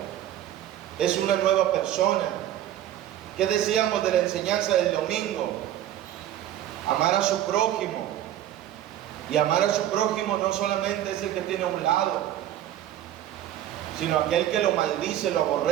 es una nueva persona. ¿Qué decíamos de la enseñanza del domingo? Amar a su prójimo. Y amar a su prójimo no solamente es el que tiene a un lado, sino aquel que lo maldice, lo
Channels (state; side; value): quieter; left; 12.2 dB